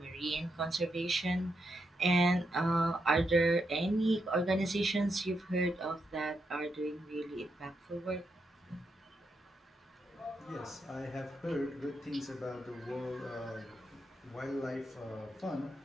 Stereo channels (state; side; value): normal; both; correlation 0.82